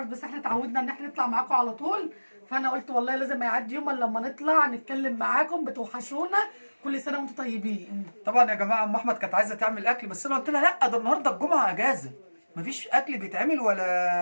بس احنا اتعودنا ان احنا نطلع معاكم على طول، فانا قلت والله لازم ما يعدي يوم الا لما نطلع نتكلم معاكم، بتوحشونا. كل سنه وانتم طيبين. طبعا يا جماعه ام احمد كانت عايزه تعمل اكل، بس انا قلت لها لا، ده النهارده الجمعه اجازه، مفيش اكل بيتعمل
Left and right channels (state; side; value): inverted; both; correlation -1.00